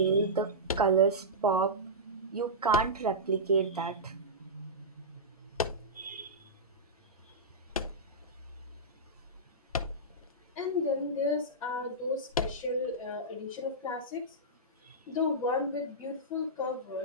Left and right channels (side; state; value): both; normal; correlation -0.14